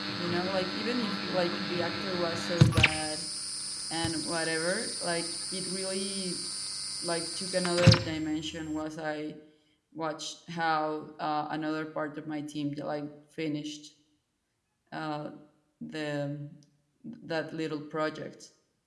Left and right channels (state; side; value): identical; both; correlation 1.00